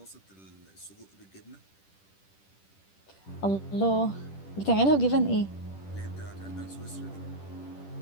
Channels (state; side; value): late; right; 10 ms